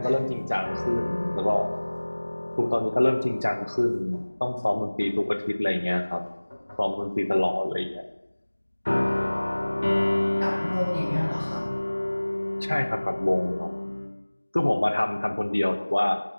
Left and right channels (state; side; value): inverted; both; correlation -1.00